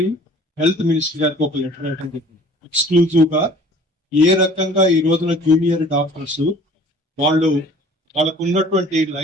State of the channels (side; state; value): both; normal; correlation 0.50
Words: హెల్త్ మినిస్టర్ గారికి ఒక లెటర్ రాయడం జరిగింది. ఎక్స్క్లూజివ్ గా ఏ రకంగా ఈ రోజున జూనియర్ డాక్టర్స్ వాళ్ళకు ఉన్నటువంటి